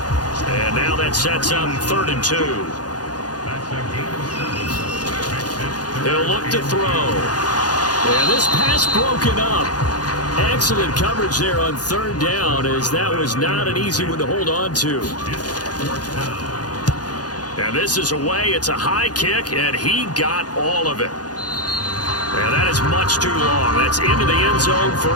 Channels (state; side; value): late; right; 0.69 ms